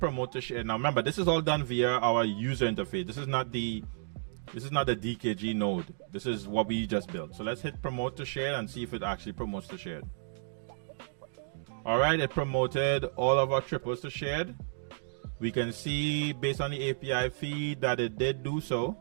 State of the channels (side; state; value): left; silent; digital silence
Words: to share. Now remember, this is all done via our user interface. This is not the DKG node. This is what we just built. So let's hit promote to share and see if it actually promotes to shared. All right, it promoted all of our triples to shared. We can see based on the API feed that it did do so.